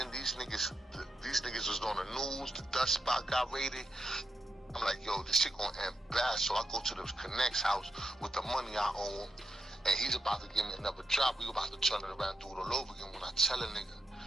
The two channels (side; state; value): both; normal; correlation 0.85